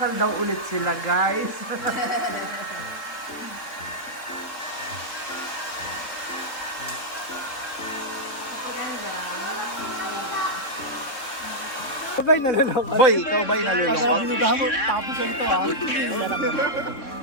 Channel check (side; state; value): right; late; 3.6 ms